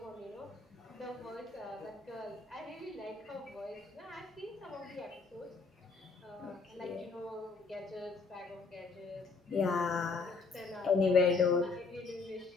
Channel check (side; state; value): right; quieter; 4.3 dB